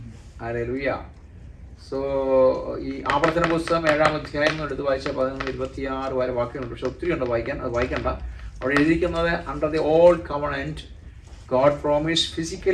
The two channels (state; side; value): identical; both; correlation 1.00